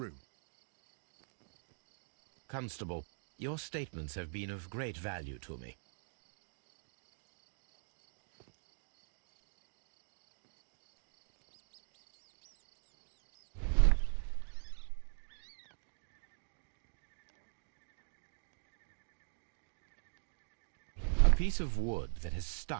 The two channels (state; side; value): silent; left; digital silence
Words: Constable, your statements have been of great value to me. A piece of wood that has